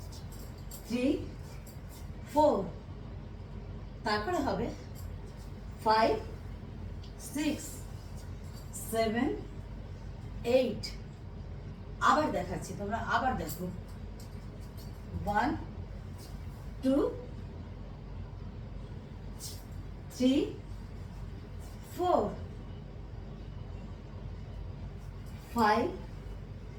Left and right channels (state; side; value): identical; both; correlation 1.00